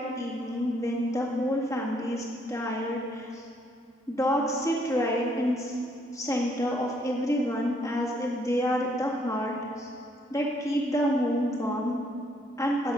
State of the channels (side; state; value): both; normal; correlation 0.69